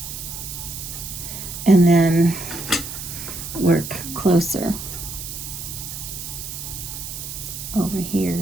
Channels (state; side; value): noise; right; hiss, 8 dB below the sound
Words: and then work closer over